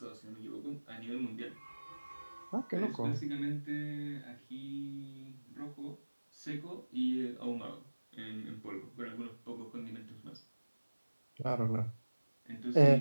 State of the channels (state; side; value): inverted; both; correlation -1.00